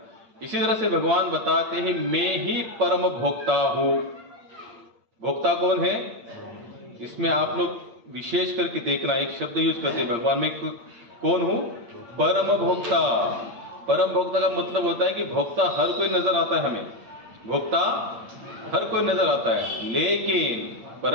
इसी तरह से भगवान बताते हैं मैं ही परम भोक्ता हूँ। भोक्ता कौन है? इसमें आप लोग विशेष करके देखना, एक शब्द यूज करते हैं भगवान में, कौन हूँ? परम भोक्ता। परम भोक्ता का मतलब होता है कि भोक्ता हर कोई नजर आता है हमें, भोक्ता हर कोई नजर आता है, लेकिन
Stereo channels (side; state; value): left; late; 8.7 ms